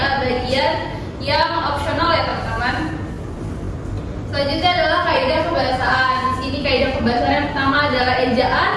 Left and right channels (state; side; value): identical; both; correlation 1.00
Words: yang opsional ya teman-teman. Selanjutnya adalah kaidah kebahasaan. Di sini kaidah kebahasaan yang pertama adalah ejaan